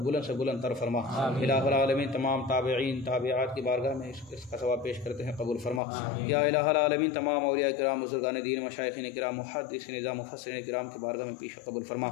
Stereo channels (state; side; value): drops out; right; at 5.8 s